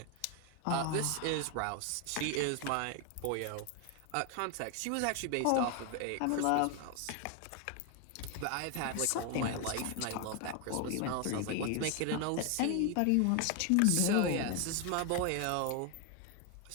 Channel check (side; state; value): both; different; correlation 0.01